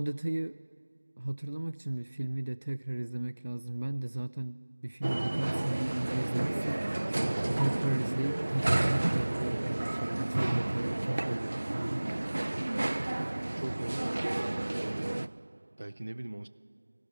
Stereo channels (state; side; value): inverted; both; correlation -1.00